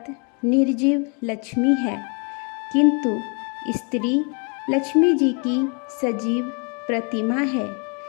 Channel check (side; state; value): right; quieter; 36.0 dB